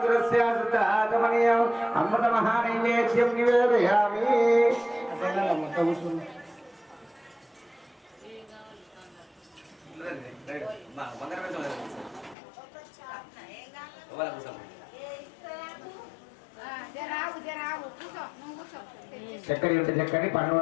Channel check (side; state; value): right; drops out; at 12.4 s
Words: శుద్ధాగమనీయం అమృత మహానైవేద్యం నివేదయామి. చక్కని ఉంటే చక్కని పండు